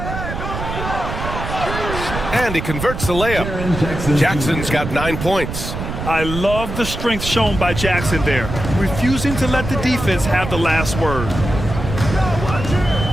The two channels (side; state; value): right; noise; rumble, 6 dB below the sound